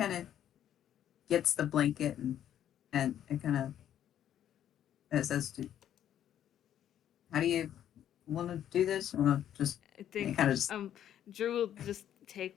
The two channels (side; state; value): right; quieter; 10.6 dB